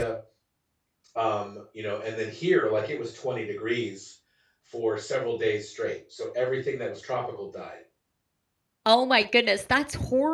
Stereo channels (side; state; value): both; identical; correlation 1.00